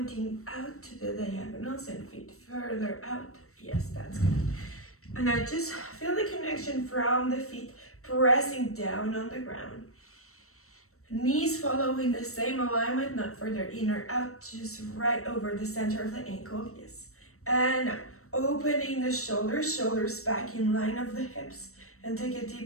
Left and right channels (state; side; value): late; right; 0.64 ms